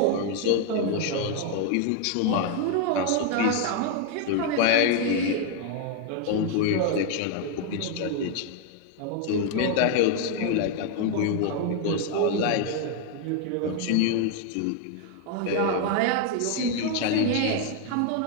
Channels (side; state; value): both; different; correlation 0.00